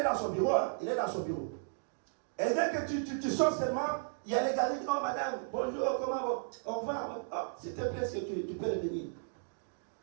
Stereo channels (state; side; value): silent; left; digital silence